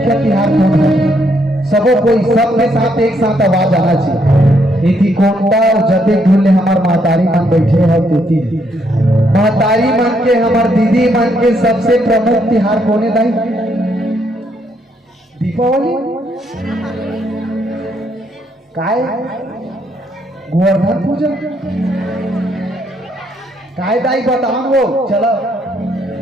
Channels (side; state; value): both; normal; correlation 0.73